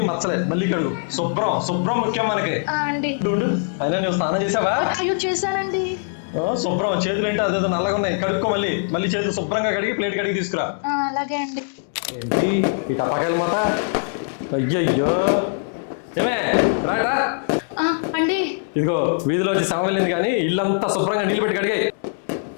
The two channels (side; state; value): right; silent; digital silence